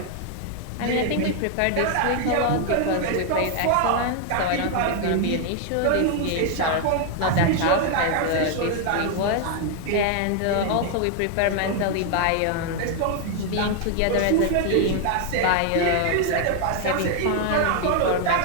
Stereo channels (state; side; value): different; both; correlation 0.00